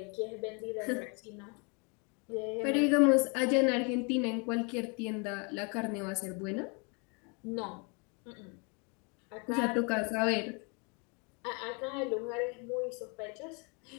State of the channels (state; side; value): quieter; right; 33.7 dB